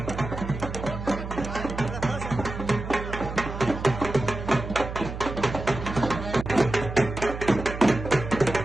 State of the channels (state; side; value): noise; right; hum, 8 dB below the sound